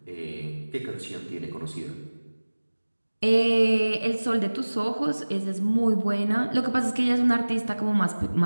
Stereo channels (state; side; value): inverted; both; correlation -1.00